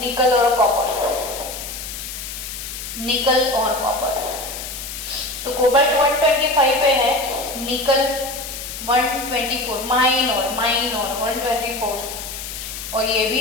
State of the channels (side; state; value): left; noise; hiss, 8 dB below the sound